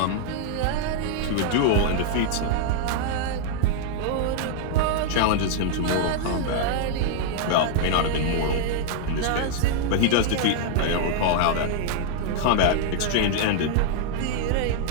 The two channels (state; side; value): different; both; correlation -0.01